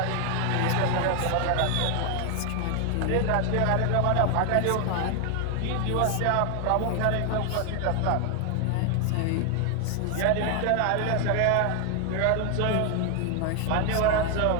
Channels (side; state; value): both; different; correlation 0.00